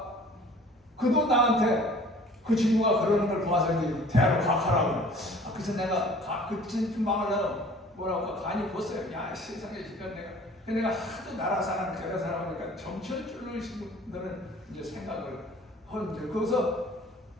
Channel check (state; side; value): normal; both; correlation 0.49